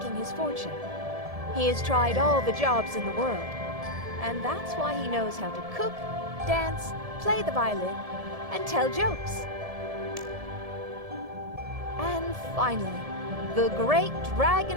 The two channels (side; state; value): left; late; 1.7 ms